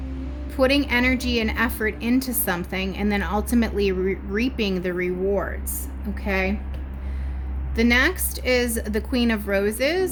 putting energy and effort into something, and then ultimately reaping the rewards. Okay. The next is the Queen of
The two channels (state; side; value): identical; both; correlation 1.00